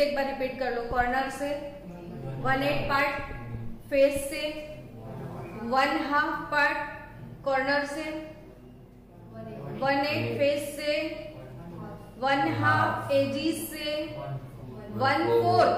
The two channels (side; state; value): both; identical; correlation 1.00